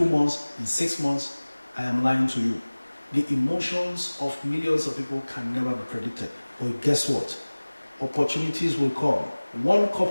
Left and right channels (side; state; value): both; inverted; correlation -1.00